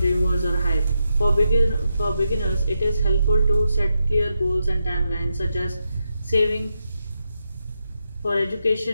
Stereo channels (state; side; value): inverted; both; correlation -0.85